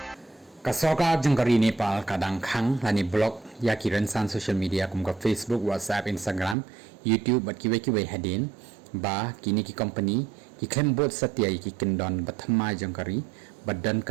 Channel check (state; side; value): drops out; left; at 6.6 s